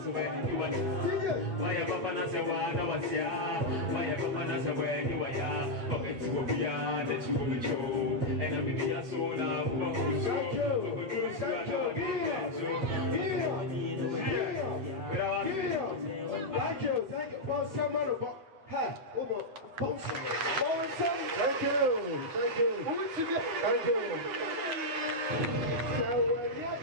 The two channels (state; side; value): late; left; 9.3 ms